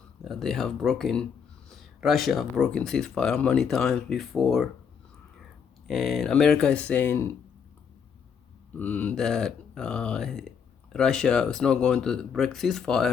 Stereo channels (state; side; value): quieter; right; 6.9 dB